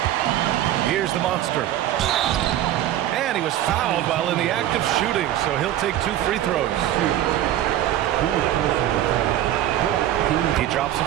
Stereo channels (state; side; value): quieter; left; 12.5 dB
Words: Here's the monster. And he was fouled while in the act of shooting, so he'll take 2 free throws. He drops the